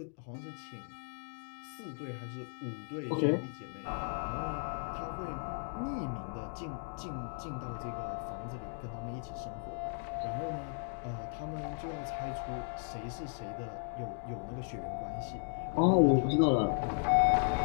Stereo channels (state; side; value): silent; right; 54 dB below the other